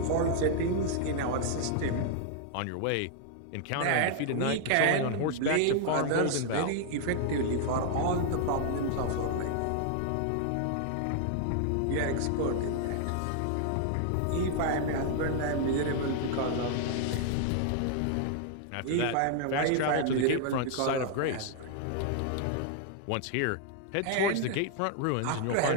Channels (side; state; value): both; different; correlation 0.00